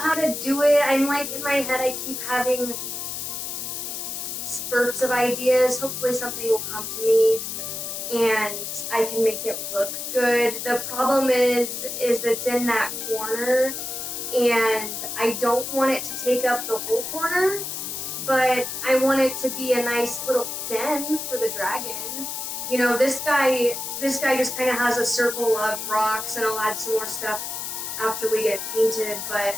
to do it. I'm like, in my head, I keep having spurts of ideas. Hopefully something will come to me and I can make it look good. The problem is it's in that corner and I don't want it to take up the whole corner, but I want it to be a nice little den for the dragon. You know, this guy just kind of has a circle of rocks, and I'll add some more stuff after we get it painted, but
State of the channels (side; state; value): left; noise; hiss, 5 dB below the sound